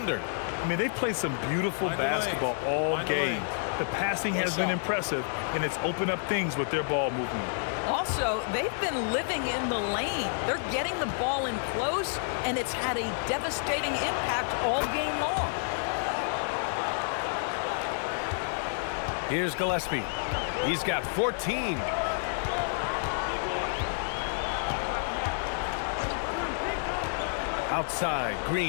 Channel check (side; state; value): right; silent; 58 dB below the other